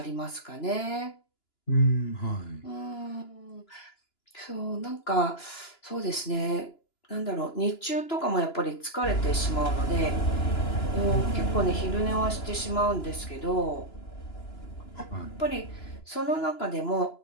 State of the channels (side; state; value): right; late; 2.9 ms